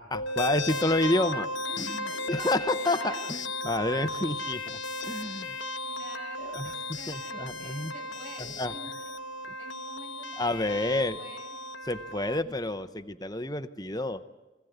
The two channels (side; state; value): both; normal; correlation 0.37